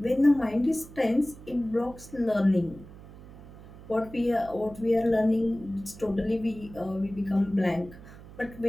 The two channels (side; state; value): right; noise; hum, 18 dB below the sound